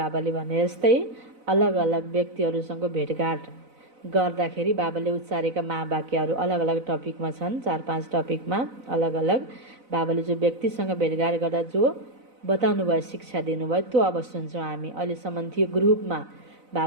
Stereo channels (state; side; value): late; left; 4.0 ms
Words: भने जस्तै अलग अलग व्यक्तिहरूसँग भेटघाट गर्दाखेरि बाबाले उच्चारेका महावाक्यहरू अलग अलग टपिकमा छन्। 4-5 टपिकमा अलग अलग बाबाले जो व्यक्तिसँग भेटघाट गर्दा जो बताउनु भयो, शिक्षा दिनुभयो, त्यो अब सुन्छौँ हामी। अहिलेसम्म थियो ग्रुपमा